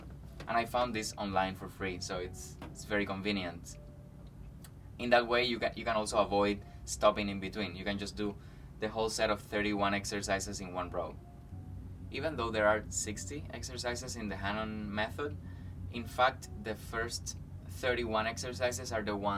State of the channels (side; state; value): both; identical; correlation 1.00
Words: And I found this online for free, so it's very convenient. In that way, you can also avoid stopping in between. You can just do the whole set of 31 exercises in one row. Even though there are 60 exercises in the Hanon method, in fact, the first 31 exercises are the